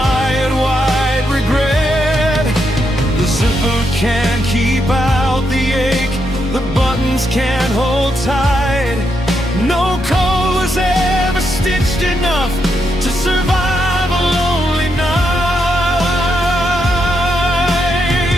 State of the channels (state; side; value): normal; both; correlation 0.81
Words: can't keep out the ache, the buttons can't hold tight. No code was ever stitched enough to survive a lonely night.